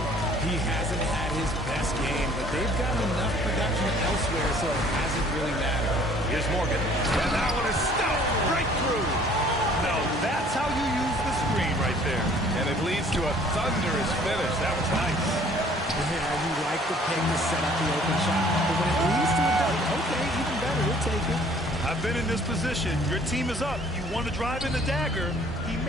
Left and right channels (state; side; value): normal; both; correlation 0.55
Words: He hasn't had his best game, but they've gotten enough production elsewhere, so it hasn't really mattered. Here's Morgan. And that one is stuffed right through. Now that's how you use the screen right there. And it leads to a thunderous finish. That was nice. Yeah, you like the pick to set up the open shot. But when it leads to a dunk, okay, even better, we'll take it. I've been in this position. Your team is up. You want to drive in the dagger. He